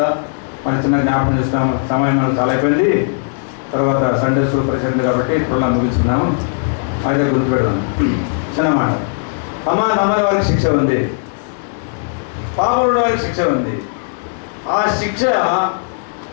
మన చిన్న జ్ఞాపకం చేస్తాం. సమయం మనకు చాలా అయిపోయింది. తర్వాత సండే స్కూల్ పరిచయం కాబట్టి ఇప్పుడు ముగించుకున్నాము. అయితే గుర్తుపెడదాం. చిన్న మాట. నమ్మని వారికి శిక్ష ఉంది, పాపమున్న వారికి శిక్ష ఉంది.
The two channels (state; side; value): silent; right; 60 dB below the other